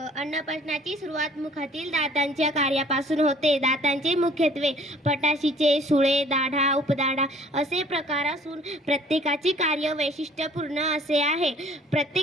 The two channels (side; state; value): both; normal; correlation 0.54